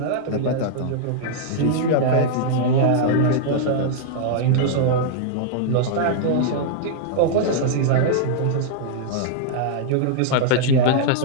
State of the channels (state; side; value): different; both; correlation -0.01